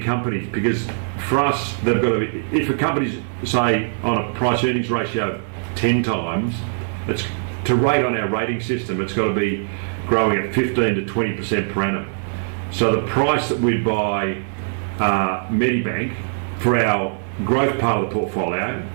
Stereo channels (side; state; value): left; silent; digital silence